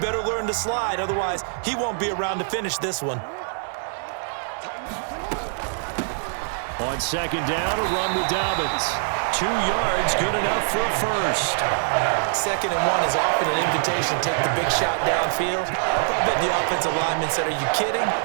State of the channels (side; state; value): left; silent; 63 dB below the other